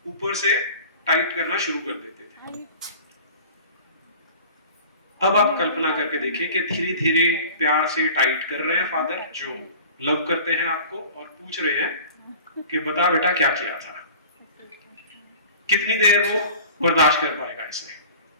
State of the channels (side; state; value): both; inverted; correlation -0.42